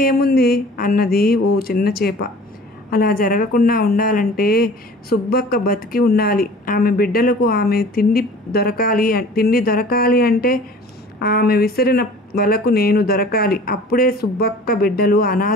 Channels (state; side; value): normal; both; correlation 0.45